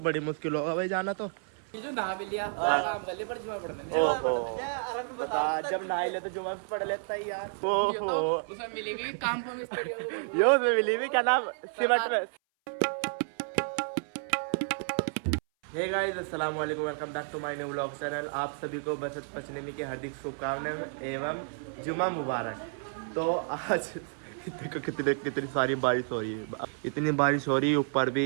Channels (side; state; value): left; silent; 57 dB below the other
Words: बड़ी मुश्किल होगा भाई जाना तो। ये जो नहा भी लिया काम कर लिया पर जुमा पढ़ लेने। बता जब नहा ले तो जुमा भी पढ़ लेता है यार। ओहो इसे मिलेगी काम पर मिस्त्री यो मिली भी क्या नाम सिमट में। हे गाइस अस्सलाम वालेकुम, welcome back to my new vlog channel. आप सभी को बसंत पंचमी की हार्दिक शुभकामनाएं एवं जुमा मुबारक। तो आज देखो कितनी सारी बारिश हो रही है, इतनी बारिश हो रही है, ऊपर भी